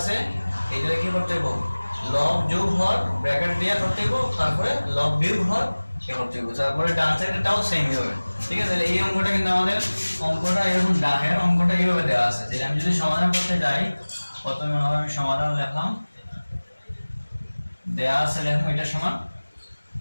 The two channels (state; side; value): inverted; both; correlation -1.00